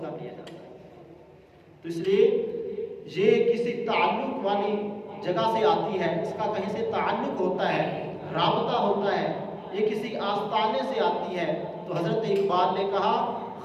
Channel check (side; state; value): both; identical; correlation 1.00